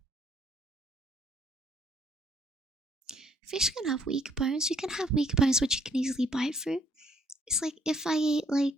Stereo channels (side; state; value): both; normal; correlation 0.65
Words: Fish can have weak bones. You can have weak bones which you can easily bite through. It's like if I ate